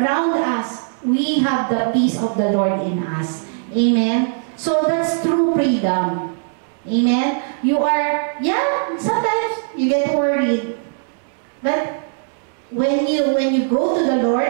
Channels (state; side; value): silent; left; 66 dB below the other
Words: us, we have the peace of the Lord in us. Amen? So that's true freedom. Amen? You are, sometimes you get worried. But when you go to the